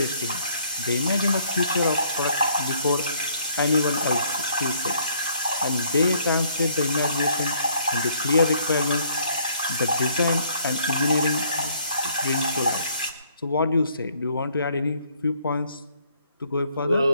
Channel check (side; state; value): both; inverted; correlation -0.64